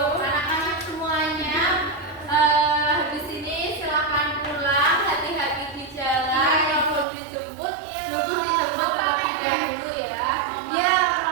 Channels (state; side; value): drops out; left; at 7.1 s